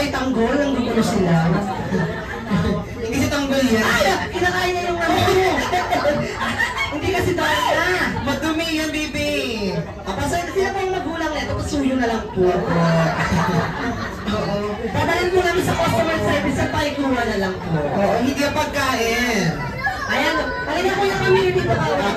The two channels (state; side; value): identical; both; correlation 1.00